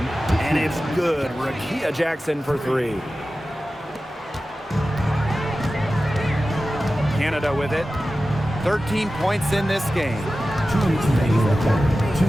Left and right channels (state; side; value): normal; both; correlation 0.94